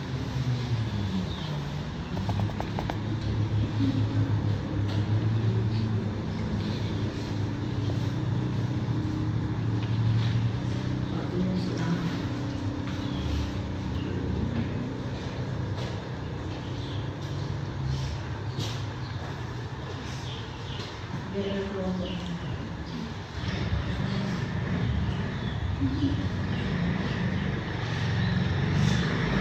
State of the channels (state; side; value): identical; both; correlation 1.00